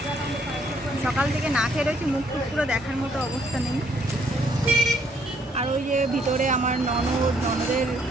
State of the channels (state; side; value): normal; both; correlation 0.67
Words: সকাল থেকে না খেয়ে রয়েছি, মুখ টুক পুরো দেখার মতো অবস্থা নেই। আর ওই যে ভিতরে আমার ননদ, ননদের